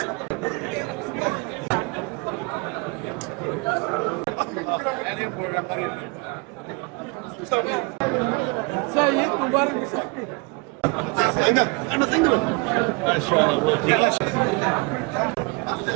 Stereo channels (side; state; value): left; quieter; 28.9 dB